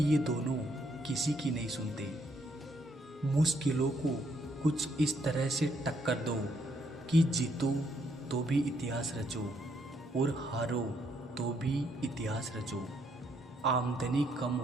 ये दोनों किसी की नहीं सुनते। मुश्किलों को कुछ इस तरह से टक्कर दो कि जीतो तो भी इतिहास रचो और हारो तो भी इतिहास रचो। आमदनी कम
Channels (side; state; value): both; normal; correlation 0.72